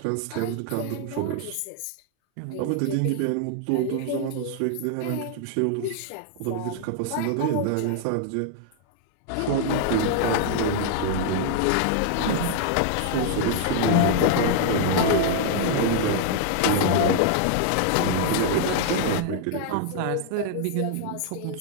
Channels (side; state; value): both; different; correlation 0.00